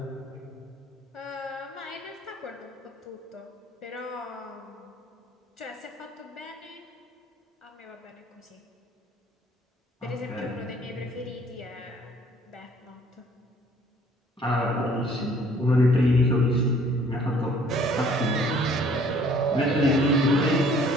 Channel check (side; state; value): both; normal; correlation 0.57